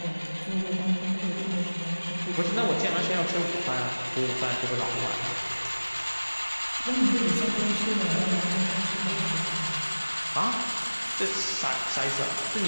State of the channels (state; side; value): inverted; both; correlation -1.00